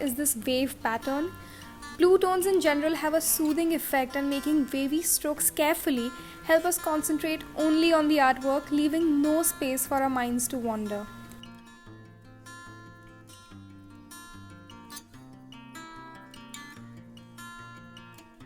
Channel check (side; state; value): both; identical; correlation 1.00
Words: this wave pattern. Blue tones in general have a soothing effect, and making wavy strokes carefully help us concentrate only on the artwork, leaving no space for our minds to wander.